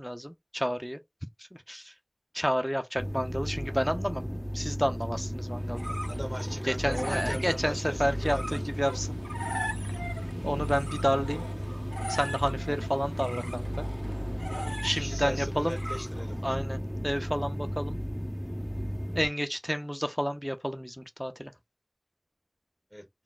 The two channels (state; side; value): identical; both; correlation 1.00